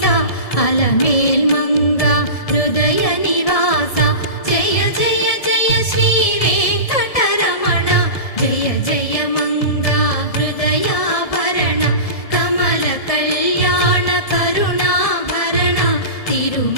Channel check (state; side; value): late; right; 1.7 ms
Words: అలమేల్ మంగ హృదయ నివాస జయ జయ జయ శ్రీ వెంకటరమణ జయ జయ మంగ హృదయాభరణ కమల కళ్యాణ కరుణాభరణ